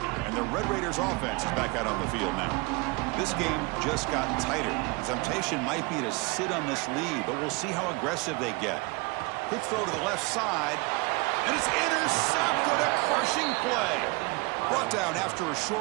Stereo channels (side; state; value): left; quieter; 26.9 dB